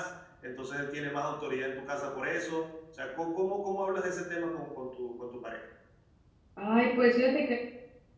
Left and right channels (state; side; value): identical; both; correlation 1.00